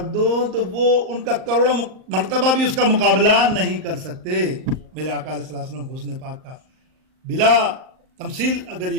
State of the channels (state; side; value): late; left; 38 ms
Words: دو، تو وہ ان کا کروڑوں مرتبہ بھی اس کا مقابلہ نہیں کر سکتے. میرے آقا علیہ السلام حسن پاک کا بلا تمثیل اگر